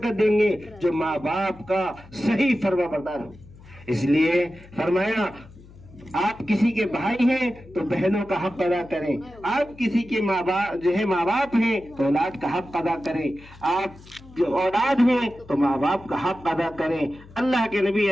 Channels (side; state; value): left; noise; hum, 21 dB below the sound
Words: دیں گے، جو ماں باپ کا صحیح فرما بردار ہو۔ اس لیے فرمایا آپ کسی کے بھائی ہیں تو بہنوں کا حق ادا کریں، آپ کسی کے ماں باپ ہیں تو اولاد کا حق ادا کریں، آپ جو اولاد ہیں تو ماں باپ کا حق ادا کریں۔ اللہ کے نبی